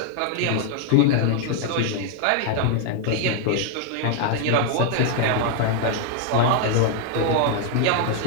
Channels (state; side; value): different; both; correlation 0.00